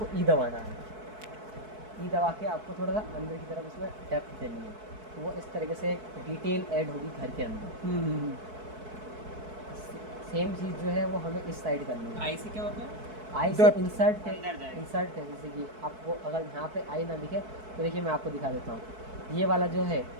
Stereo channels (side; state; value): left; late; 4.6 ms